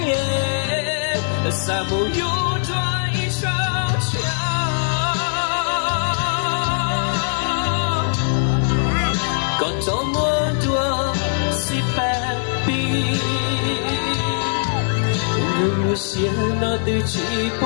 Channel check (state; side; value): silent; right; digital silence